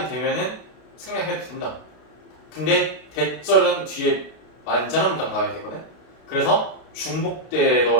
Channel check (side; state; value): right; late; 32 ms